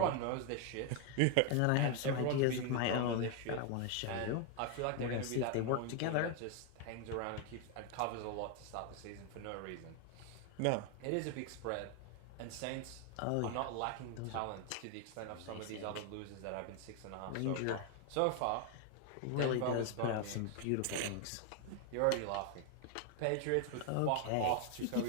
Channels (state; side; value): different; both; correlation 0.01